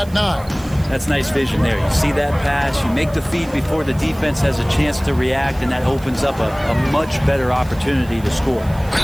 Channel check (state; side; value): noise; right; hiss, 22 dB below the sound